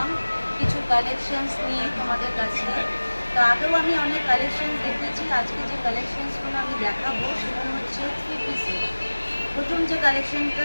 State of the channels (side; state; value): both; inverted; correlation -1.00